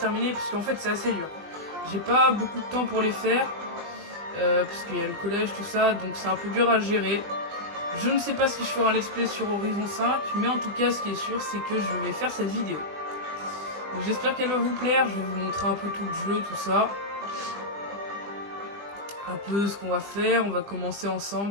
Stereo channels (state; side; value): late; left; 20 ms